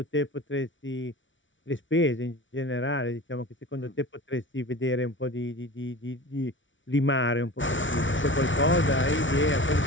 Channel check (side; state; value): right; late; 0.56 ms